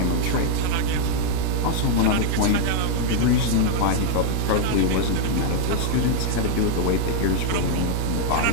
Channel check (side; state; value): both; different; correlation 0.01